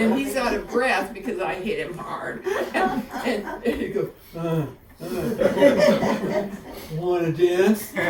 he's out of breath because I hit him hard. And he goes, Wanna dance?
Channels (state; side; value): identical; both; correlation 1.00